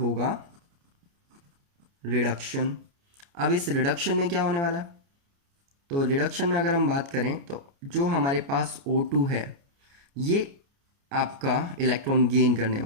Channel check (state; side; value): late; left; 29 ms